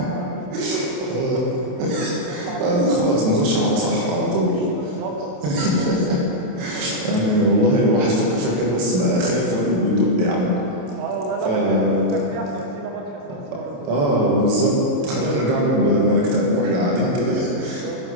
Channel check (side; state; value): left; late; 27 ms